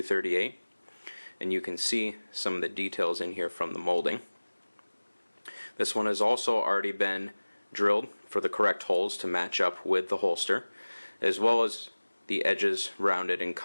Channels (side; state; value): both; inverted; correlation -1.00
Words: and you can see some of the details in here from the molding. This one has also already been drilled for the correct holes to match up with the holster, as well as the edges rounded and